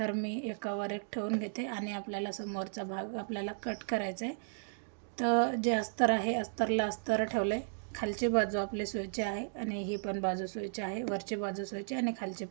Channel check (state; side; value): silent; left; digital silence